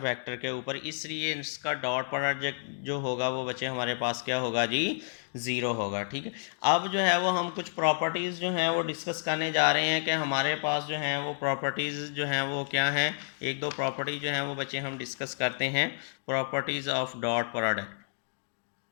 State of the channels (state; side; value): silent; right; digital silence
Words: के ऊपर, इसलिए इसका डॉट प्रोडक्ट जो होगा वो बच्चे हमारे पास क्या होगा जी, ज़ीरो होगा। ठीक है, अब जो है वो हम कुछ प्रॉपर्टीज़ जो हैं वो डिस्कस करने जा रहे हैं कि हमारे पास जो हैं वो प्रॉपर्टीज़ जो हैं वो क्या हैं। एक दो प्रॉपर्टी जो हैं वो बच्चे हम डिस्कस करते हैं। Properties of dot product,